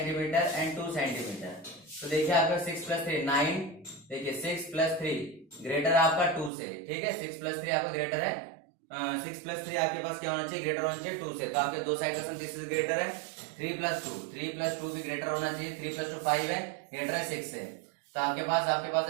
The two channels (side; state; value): left; drops out; at 6.5 s